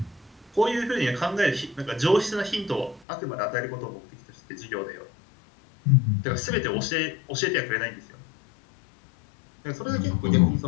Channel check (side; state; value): right; drops out; at 3.1 s